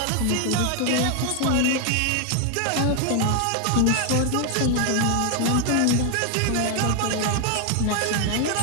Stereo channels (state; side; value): different; both; correlation 0.00